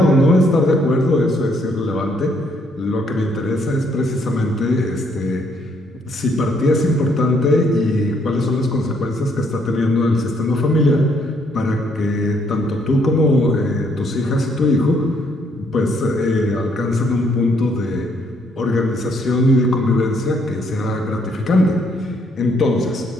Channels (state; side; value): normal; both; correlation 0.69